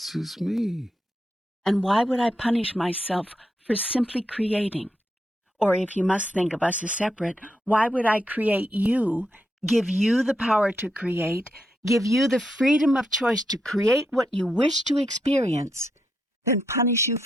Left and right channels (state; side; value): normal; both; correlation 0.82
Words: is me? And why would I punish myself for simply creating? Or if you must think of us as separate, why would I create you, give you the power to create, give you the freedom of choice to create what you wish to experience, then punish you